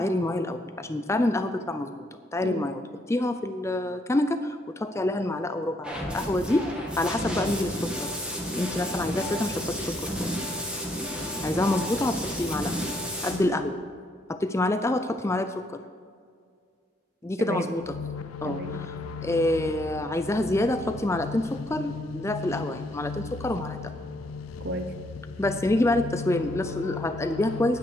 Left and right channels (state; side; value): normal; both; correlation 0.71